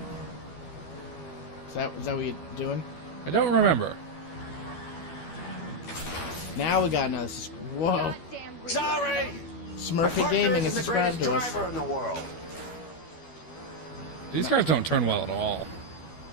Is that what you're doing? I don't remember. Now we got another... Whoa. Sorry! Smurfy Gaming has subscribed to us. In the world. These cars don't turn well at all.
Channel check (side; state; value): right; late; 12 ms